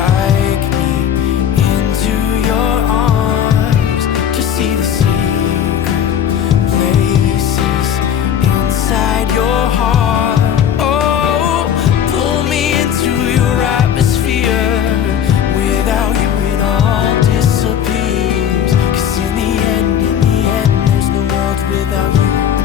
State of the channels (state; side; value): quieter; right; 9.1 dB